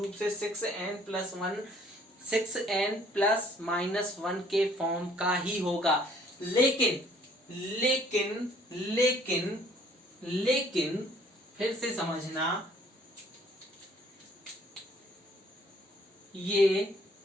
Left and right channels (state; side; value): normal; both; correlation 0.59